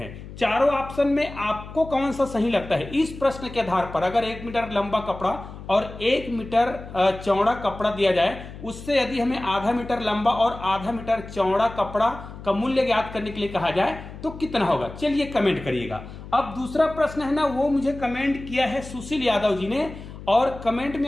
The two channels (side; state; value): left; noise; hum, 13 dB below the sound